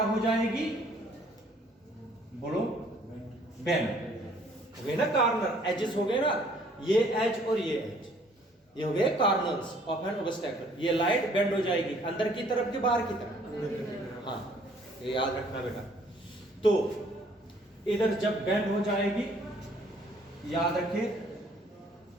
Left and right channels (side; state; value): both; normal; correlation 0.60